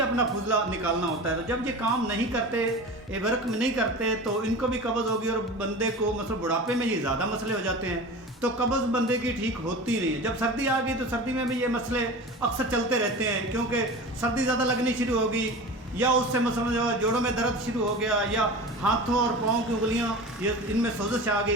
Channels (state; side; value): normal; both; correlation 0.33